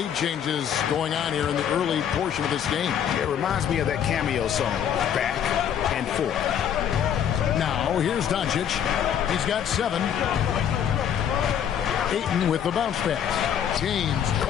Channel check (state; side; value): quieter; right; 9.0 dB